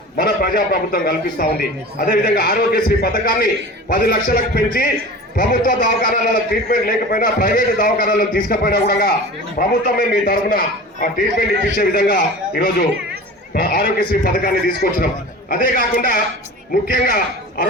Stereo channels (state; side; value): normal; both; correlation 0.36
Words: మన ప్రజా ప్రభుత్వం కల్పిస్తా ఉంది. అదేవిధంగా ఆరోగ్యశ్రీ పథకాన్ని 10 లక్షలకు పెంచి ప్రభుత్వ దవాఖానాలలో ట్రీట్మెంట్ లేకపోయినా ప్రైవేట్ దవాఖానాలను తీసుకుపోయినా కూడా ప్రభుత్వమే మీ తరఫున ఆ ట్రీట్మెంట్ ఇప్పించే విధంగా ఈరోజు ఆరోగ్యశ్రీ పథకాన్ని తీసుకొచ్చినాం. అదే కాకుండా ముఖ్యంగా ఆ